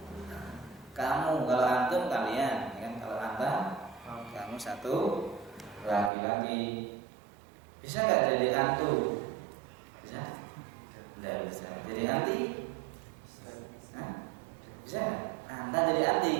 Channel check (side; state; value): left; drops out; at 6.1 s